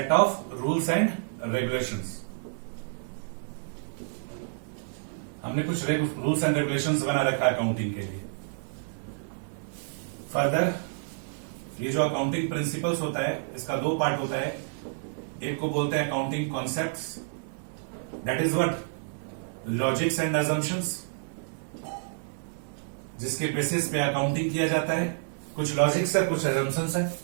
of rules and regulations. हमने कुछ रूल्स एंड रेगुलेशंस बना रखा है अकाउंटिंग के लिए। फर्दर, ये जो अकाउंटिंग प्रिंसिपल्स होता है, इसका दो पार्ट होता है। एक को बोलते हैं accounting concepts, that is what? Logics and assumptions, जिसके बेसिस पे अकाउंटिंग किया जाता है। कुछ लॉजिक्स है, कुछ अजम्पशंस है,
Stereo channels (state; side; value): silent; left; digital silence